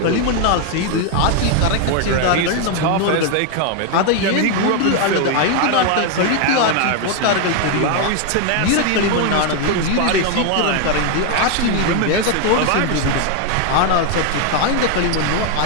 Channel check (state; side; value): different; both; correlation 0.01